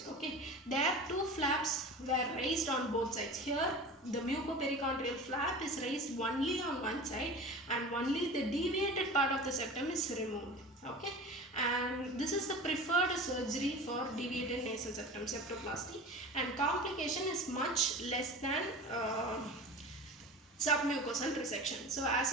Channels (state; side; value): normal; both; correlation 0.35